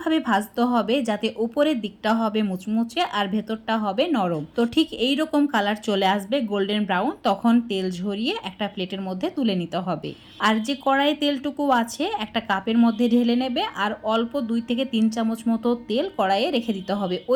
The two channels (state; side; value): identical; both; correlation 1.00